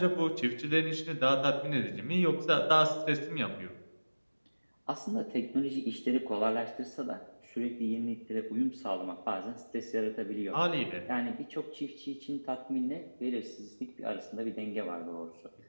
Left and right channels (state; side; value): inverted; both; correlation -1.00